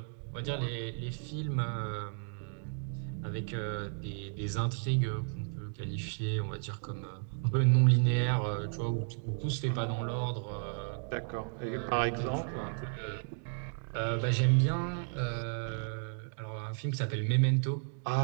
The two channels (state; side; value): silent; left; 55 dB below the other